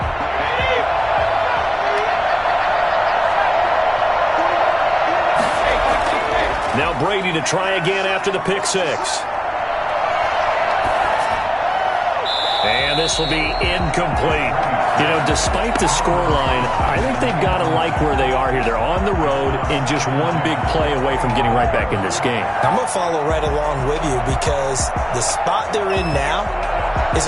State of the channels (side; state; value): both; identical; correlation 1.00